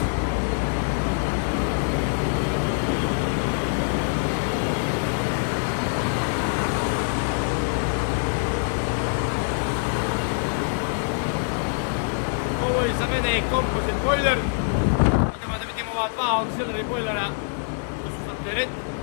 mene je composite boiler. Idemo da vidimo ova dva auxiliary boilera, to su za teret.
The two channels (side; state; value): right; silent; digital silence